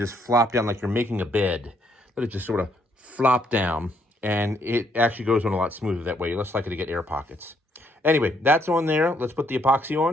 flop down like you're making a bed. Let it just sort of flop down, and it actually goes on a lot smoother that way. You're less likely to get air pockets. Anyway, that's on there. Let's put the epoxy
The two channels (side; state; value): both; normal; correlation 0.70